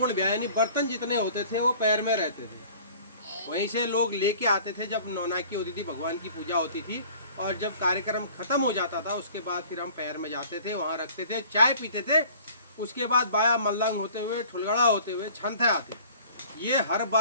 ब्याह, यानी बर्तन जितने होते थे वो पैर में रहते थे। वहीं से लोग लेके आते थे जब नौनाकी होती थी, भगवान की पूजा होती थी। और जब कार्यक्रम खत्म हो जाता था उसके बाद फिर हम पैर में जाते थे, वहाँ रखते थे, चाय पीते थे। उसके बाद बाया मल्लंग होते हुए, ठुलगड़ा होते हुए छंथे आते। ये हर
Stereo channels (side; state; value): both; inverted; correlation -0.49